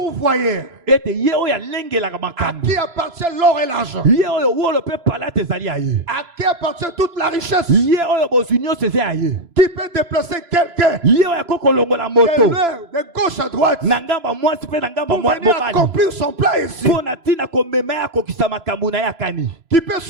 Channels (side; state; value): left; late; 3.0 ms